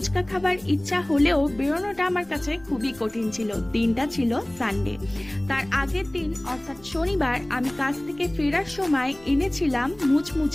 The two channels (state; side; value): noise; left; rumble, 24 dB below the sound